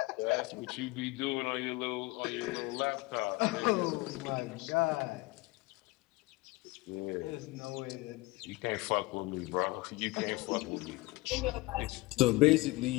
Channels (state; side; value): quieter; right; 21.8 dB